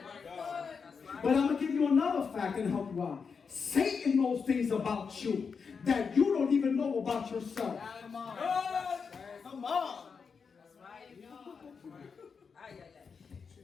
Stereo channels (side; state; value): right; quieter; 5.7 dB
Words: But I'm going to give you another fact and help you out. Satan knows things about you that you don't even know about yourself. Come on. Come on.